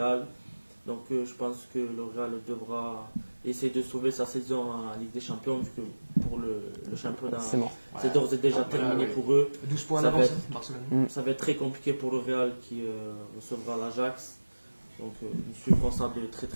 Donc je pense que le Real devra essayer de sauver sa saison en Ligue des Champions, vu que pour le championnat, C'est mort. c'est d'ores et déjà terminé pour eux. 12 points Ça va d'avance, être- Barcelone. Ça va être très compliqué pour le Real qui recevra l'Ajax. Donc ils suivront ça de très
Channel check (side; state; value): both; inverted; correlation -1.00